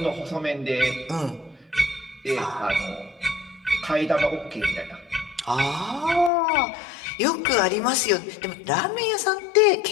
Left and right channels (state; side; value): drops out; right; at 6.3 s